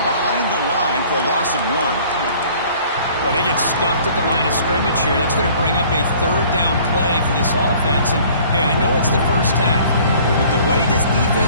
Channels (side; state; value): both; inverted; correlation -0.52